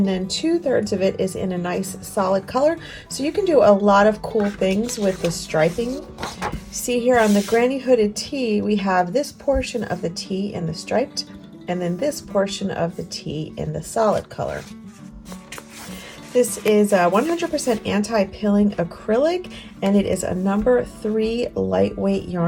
then 2/3 of it is in a nice solid color. So you can do a lot of cool things with the striping. See here on the granny hooded tee, we have this portion of the tee in the striped, and then this portion of the tee in the solid color. This is 100% anti-pilling acrylic, and it is a number 3 lightweight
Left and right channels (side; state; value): both; identical; correlation 1.00